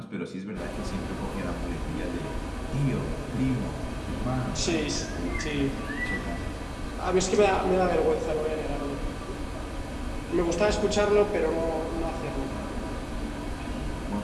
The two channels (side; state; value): both; identical; correlation 1.00